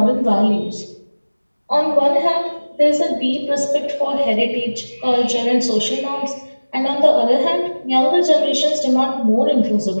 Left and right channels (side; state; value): both; inverted; correlation -1.00